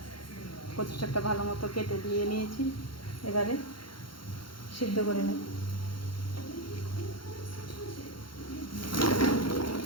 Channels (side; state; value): right; late; 0.73 ms